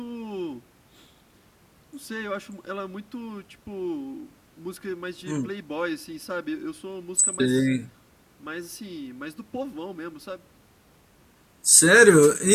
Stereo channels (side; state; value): both; identical; correlation 1.00